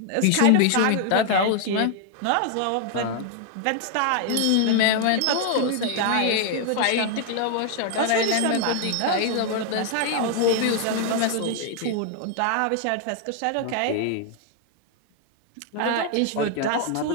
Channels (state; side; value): different; both; correlation 0.00